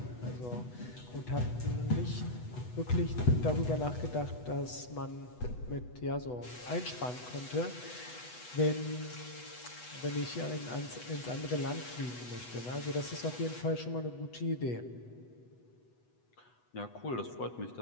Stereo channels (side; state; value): right; late; 8.1 ms